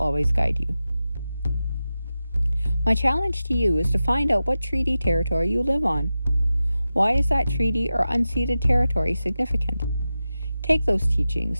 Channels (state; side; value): inverted; both; correlation -0.93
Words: guide you. My challenge to you is to find out what treaty territory you live on. Why is that treaty or unceded territory significant? Take those